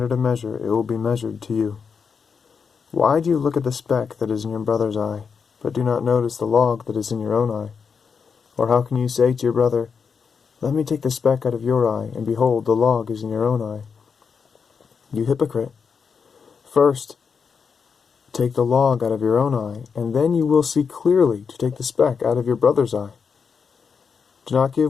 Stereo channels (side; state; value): right; quieter; 6.0 dB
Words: of measure it will be measured to you. Why do you look at the speck that is in your brother's eye, but do not notice the log that is in your own eye? Or how can you say to your brother, Let me take the speck out of your eye, and behold, the log is in your own eye? You hypocrite! First, take the log out of your own eye, and then you will see clearly to take the speck out of your brother's eye. Do not